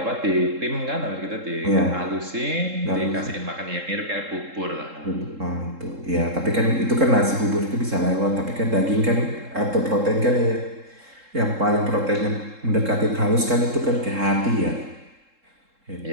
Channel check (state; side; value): late; left; 3.7 ms